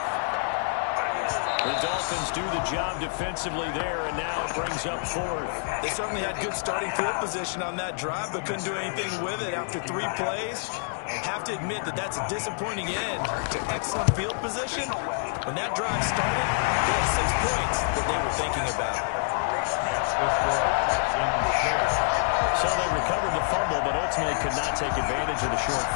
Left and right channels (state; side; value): silent; right; digital silence